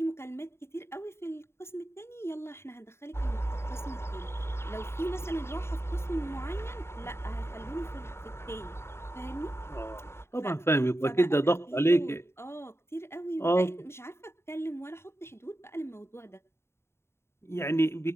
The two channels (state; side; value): late; right; 0.12 ms